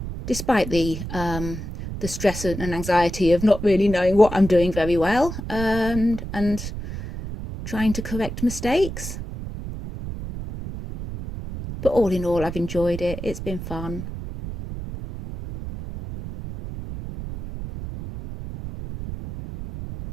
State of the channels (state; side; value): noise; right; rumble, 8 dB below the sound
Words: despite the stress and anxiety of not really knowing what I'm doing very well, and trying to correct mistakes. But all in all, I've enjoyed it. It's been fun.